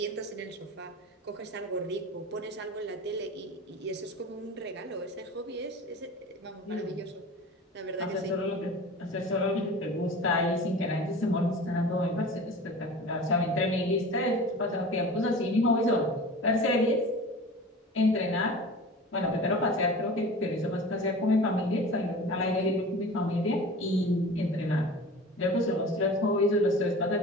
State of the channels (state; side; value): normal; both; correlation 0.37